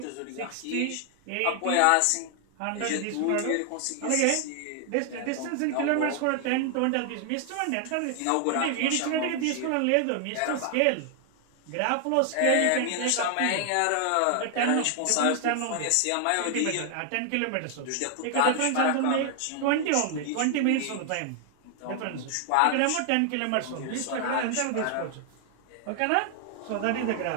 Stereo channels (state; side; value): different; both; correlation 0.00